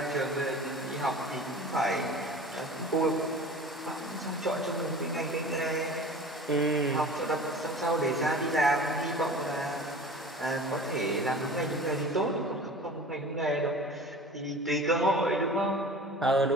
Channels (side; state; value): both; normal; correlation 0.39